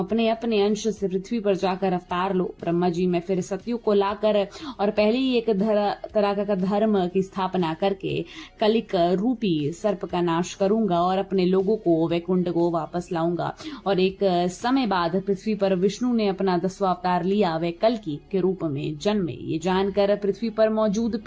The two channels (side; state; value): both; identical; correlation 1.00